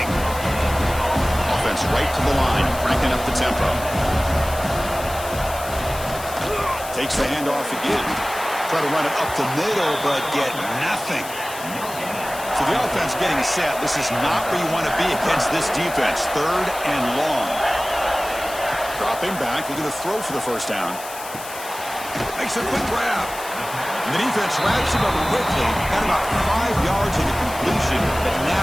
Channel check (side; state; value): left; noise; hiss, 12 dB below the sound